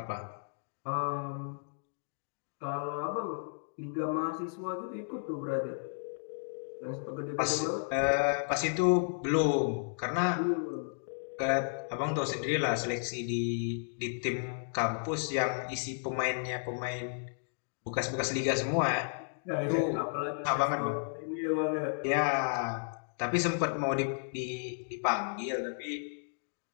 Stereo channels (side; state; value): right; silent; digital silence